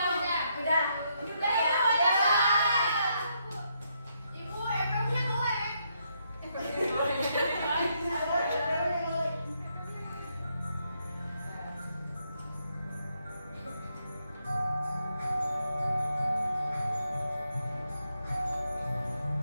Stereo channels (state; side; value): inverted; both; correlation -0.77